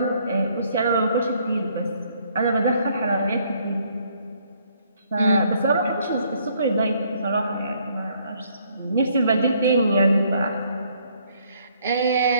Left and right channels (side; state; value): both; inverted; correlation -0.66